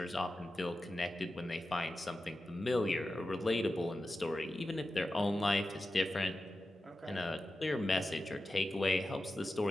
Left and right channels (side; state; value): both; normal; correlation 0.92